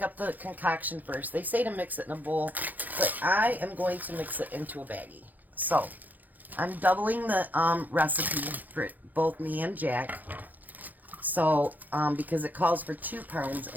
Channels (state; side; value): late; left; 0.083 ms